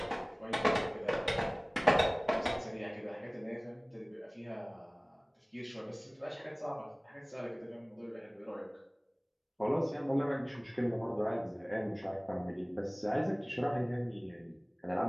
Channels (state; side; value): identical; both; correlation 1.00